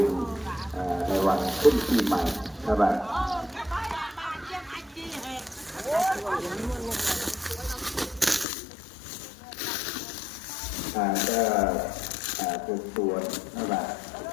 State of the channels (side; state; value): right; drops out; at 8.5 s